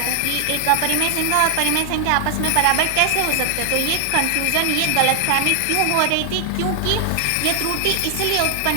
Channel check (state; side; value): different; both; correlation 0.00